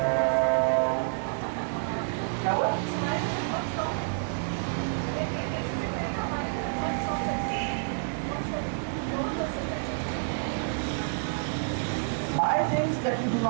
क्या हुआ? Buy things that you do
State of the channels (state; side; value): silent; left; digital silence